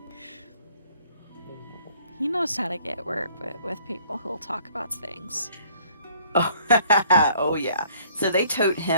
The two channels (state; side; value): inverted; both; correlation -0.60